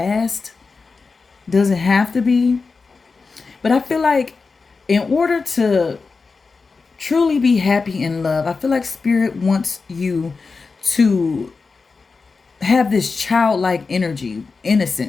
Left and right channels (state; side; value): quieter; right; 4.4 dB